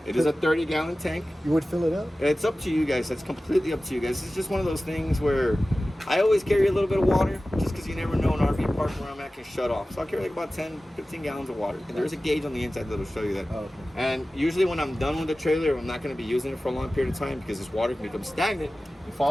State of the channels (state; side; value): normal; both; correlation 0.96